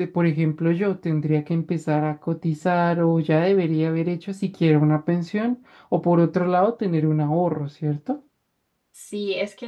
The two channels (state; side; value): identical; both; correlation 1.00